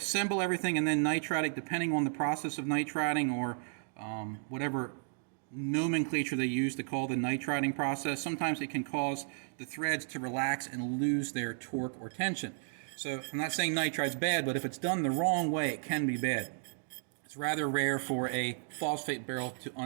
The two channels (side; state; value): left; silent; digital silence